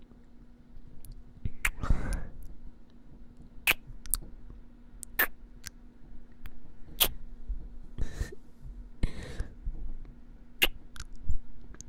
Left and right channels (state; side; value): identical; both; correlation 1.00